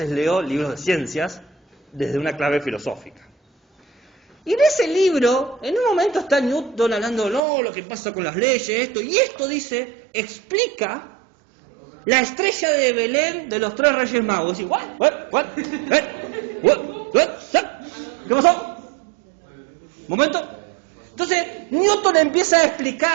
leo libros de ciencias desde una clave filosófica. Y en ese libro, en un momento está Newton hablando, no, lo que pasa con las leyes, esto, y esto dice, explica la estrella de Belén de los 3 Reyes Magos. Y what? ¿Qué pasó? ¿Momento? Entonces, Newton empieza a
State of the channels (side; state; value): left; drops out; at 7.4 s